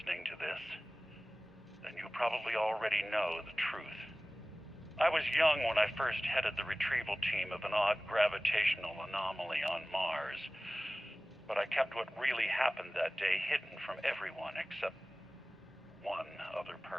to this, then you probably already know the truth. I was young when I first headed the retrieval team of an odd gravitational anomaly on Mars. But I kept what really happened that day hidden from everyone except one other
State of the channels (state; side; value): normal; both; correlation 0.98